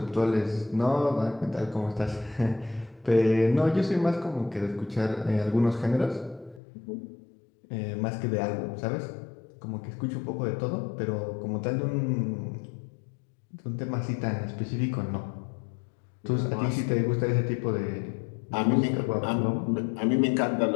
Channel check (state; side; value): drops out; right; at 6.6 s